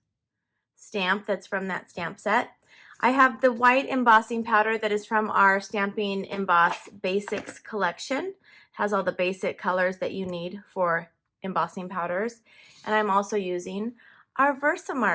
stamp that's from that stamp set. I have the white embossing powder that is from our Stampin' Emboss Basics collection. It has all the basic colors that you need for embossing powders. And I'm also using our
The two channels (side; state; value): both; identical; correlation 1.00